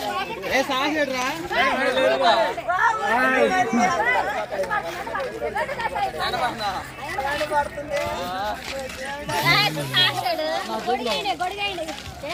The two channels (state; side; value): identical; both; correlation 1.00